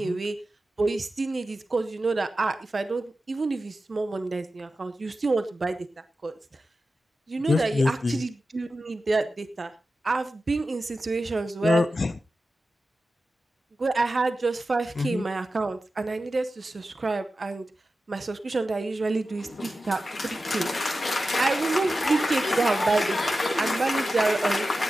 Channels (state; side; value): normal; both; correlation 0.93